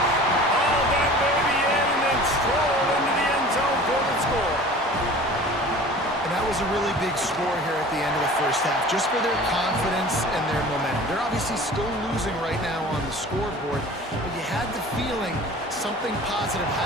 Hauled that baby in and then strolled into the end zone for the score. And that was a really big score here at the end of the 1st half, just for their confidence and their momentum. They're obviously still losing right now on the scoreboard, but you had the feeling something positive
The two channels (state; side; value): normal; both; correlation 0.42